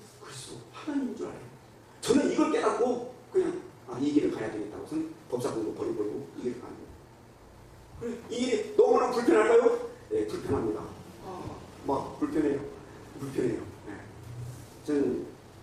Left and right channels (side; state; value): both; identical; correlation 1.00